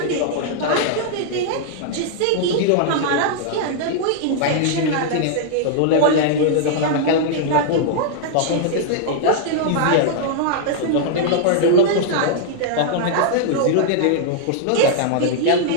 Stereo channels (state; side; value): different; both; correlation -0.01